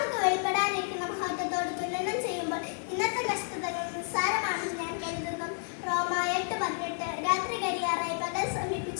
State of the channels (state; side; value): silent; right; 57 dB below the other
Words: വെളിപ്പെടാനിരിക്കുന്ന മഹത്വത്തോട് തുലനം ചെയ്യുമ്പോൾ ഇന്നത്തെ കഷ്ടതകൾ നിസ്സാരമാണെന്ന് ഞാൻ കരുതുന്നു. റോമ 8:18 രാത്രി കരിയാറായി പകൽ